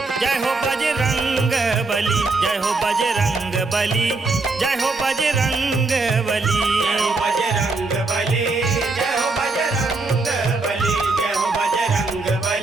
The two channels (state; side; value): quieter; left; 3.6 dB